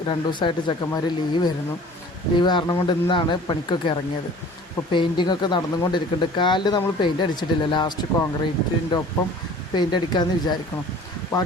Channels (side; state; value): both; normal; correlation 0.46